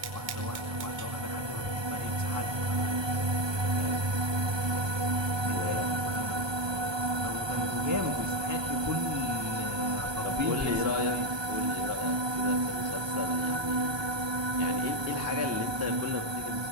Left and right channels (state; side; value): late; left; 1.2 ms